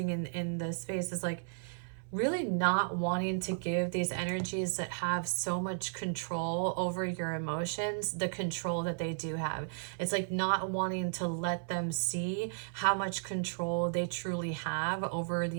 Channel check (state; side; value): silent; left; 55 dB below the other